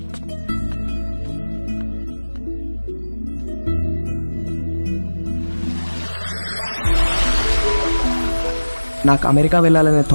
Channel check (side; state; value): both; inverted; correlation -1.00